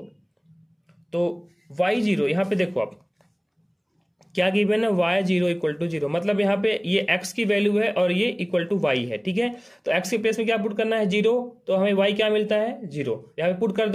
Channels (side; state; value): both; identical; correlation 1.00